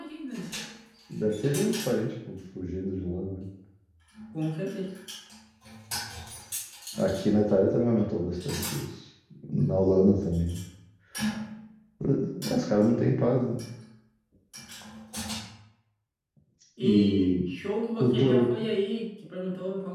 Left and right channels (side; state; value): both; identical; correlation 1.00